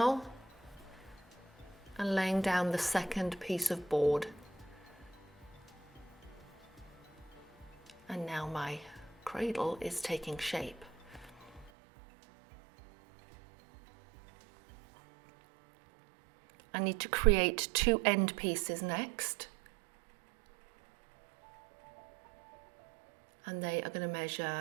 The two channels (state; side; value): drops out; left; at 11.7 s